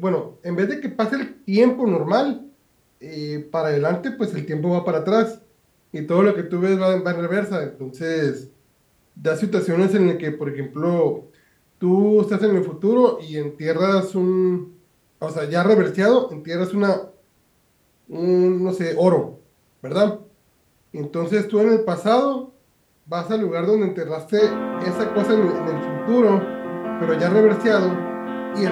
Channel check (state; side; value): identical; both; correlation 1.00